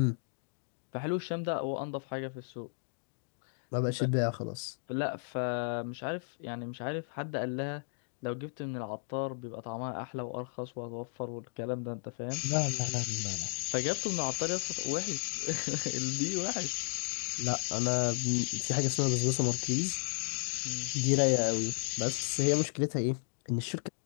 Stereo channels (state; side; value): silent; right; digital silence